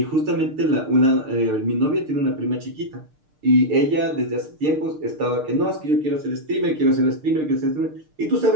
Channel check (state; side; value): late; left; 6.6 ms